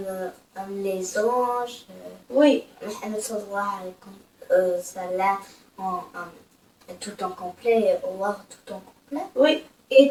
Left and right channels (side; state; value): both; identical; correlation 1.00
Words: Les anges, Oui. Muhammad sallallahu alayhi wa sallam, tout en complet, Allah tout en complet. Oui.